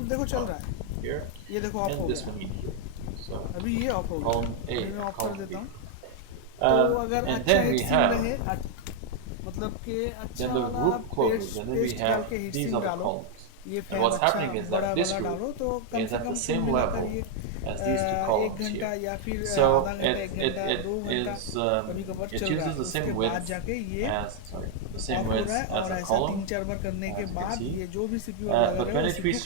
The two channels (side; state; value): both; different; correlation 0.00